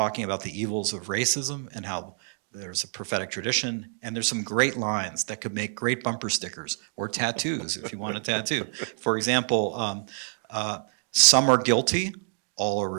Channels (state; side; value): silent; left; 60 dB below the other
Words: about the evils of racism and how there's a prophetic tradition, and there's some great lines that could make great bumper stickers or tattoos if you want a tattoo. For example, some are guilty, all are